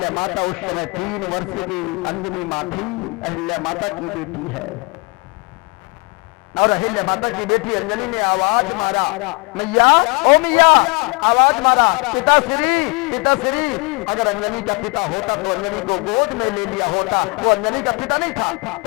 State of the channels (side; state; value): right; quieter; 30.4 dB